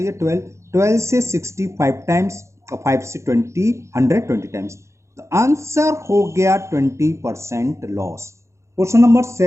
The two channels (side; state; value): left; late; 0.14 ms